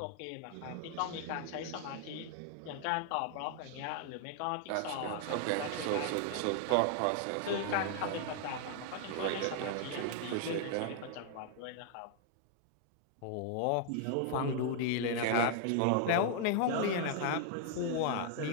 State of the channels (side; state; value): both; different; correlation 0.00